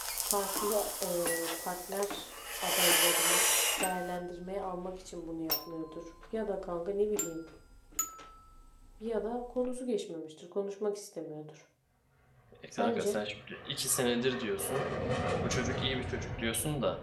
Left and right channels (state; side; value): identical; both; correlation 1.00